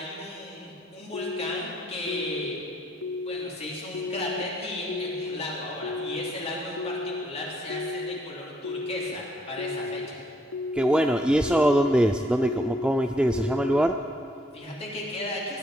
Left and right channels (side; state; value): both; normal; correlation 0.68